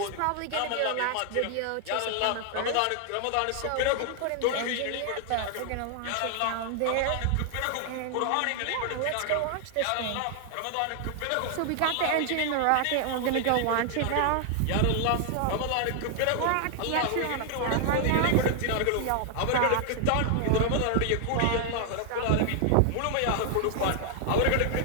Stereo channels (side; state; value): both; different; correlation 0.00